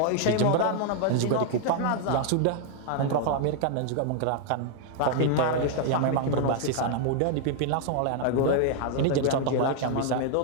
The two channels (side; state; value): both; different; correlation 0.00